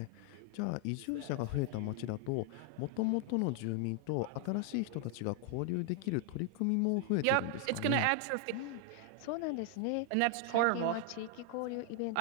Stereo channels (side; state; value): both; different; correlation 0.01